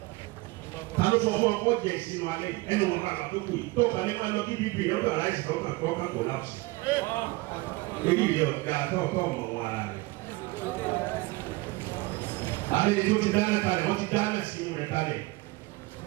Ta ló sọ fún ọ kó jẹ ìsinmi alẹ́ yìí? Ẹnu wọn kàkà tó kù yìí. Tó kàn lè máa lọ kí bíbí ọ̀dọ̀ aláìsí ọkàn tó kàn kò lápùsì. Lórí ìyọ̀ ọ̀gá tó mọ̀ wọn ara rẹ̀. Àlejò tó ti dáná kalẹ̀, wọ́n ti dáná sí inú rẹ̀ kalẹ̀.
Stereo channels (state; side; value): quieter; left; 22.0 dB